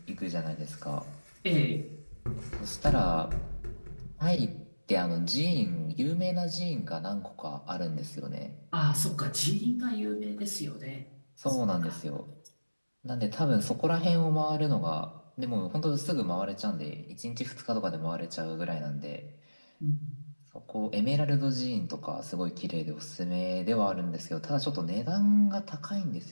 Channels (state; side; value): inverted; both; correlation -1.00